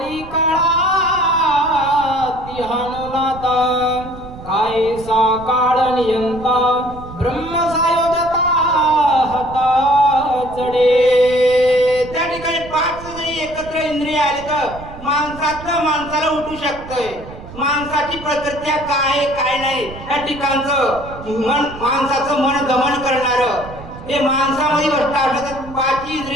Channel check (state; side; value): noise; right; rumble, 15 dB below the sound